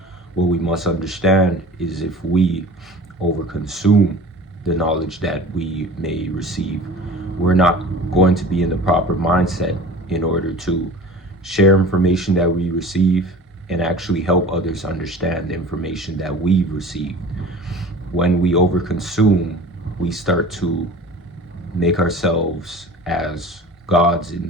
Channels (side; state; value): both; normal; correlation 0.40